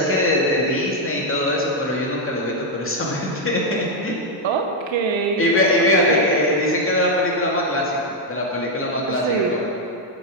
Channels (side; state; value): both; normal; correlation 0.00